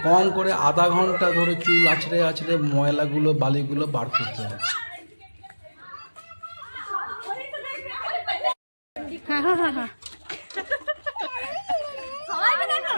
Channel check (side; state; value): both; inverted; correlation -1.00